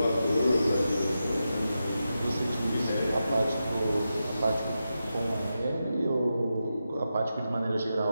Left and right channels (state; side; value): inverted; both; correlation -0.89